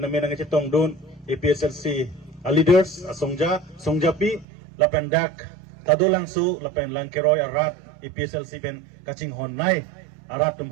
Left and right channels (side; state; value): left; drops out; at 4.5 s